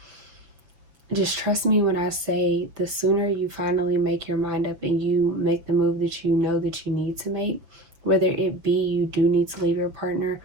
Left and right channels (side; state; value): left; late; 6.7 ms